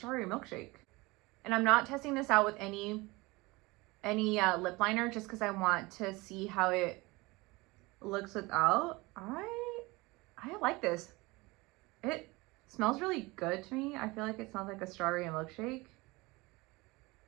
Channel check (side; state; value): left; quieter; 23.2 dB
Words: milkshake. And I'm not testing this out with any lip liner, just because I want to see how it looks without. I like this. It smells really good to me. I feel like it smells like a strawberry milkshake.